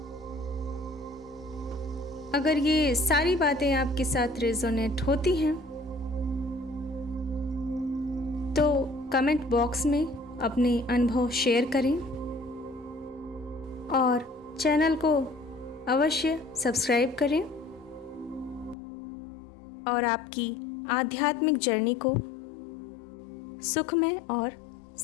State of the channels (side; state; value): right; drops out; at 18.8 s